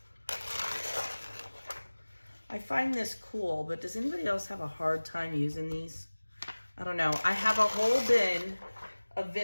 I find this cool, but does anybody else have a hard time using these? I don't know. I have a whole bin of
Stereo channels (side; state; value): both; inverted; correlation -1.00